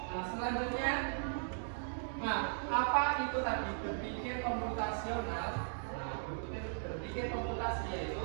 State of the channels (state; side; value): silent; left; digital silence